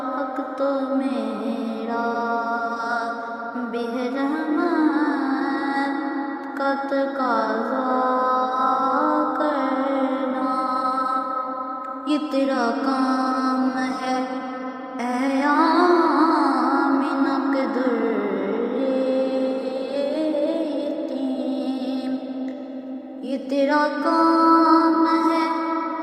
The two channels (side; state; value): both; identical; correlation 1.00